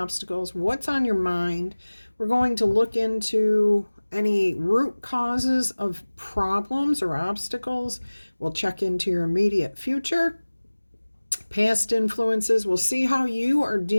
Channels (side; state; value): both; inverted; correlation -1.00